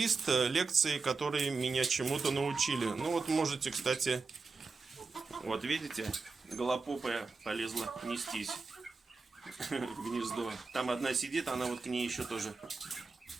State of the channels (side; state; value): left; quieter; 4.3 dB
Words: лекций, которые меня чему-то научили. Ну вот можете, кстати, вот видите, голопопая полезла нестись в гнездо. Там одна сидит, она вот к ней еще тоже